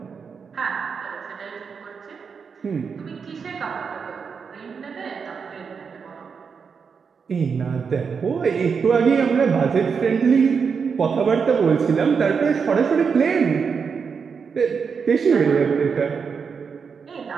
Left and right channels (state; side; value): quieter; left; 5.9 dB